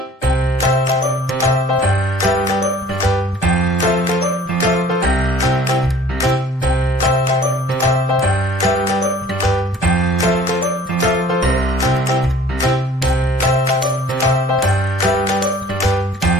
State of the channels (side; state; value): both; normal; correlation 0.52